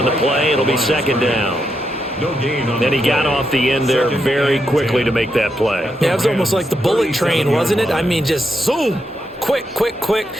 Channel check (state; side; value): normal; both; correlation 0.82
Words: the play. It'll be second down. And he got off the end there very quickly to make that play. Yeah, it was almost like the bullet train, wasn't it? I mean, just zoom. Quick, quick, quick.